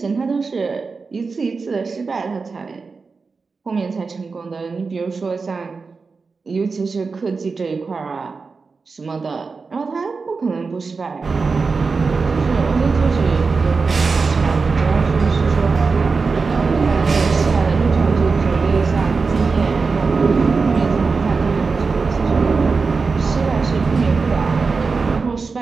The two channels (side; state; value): left; quieter; 4.5 dB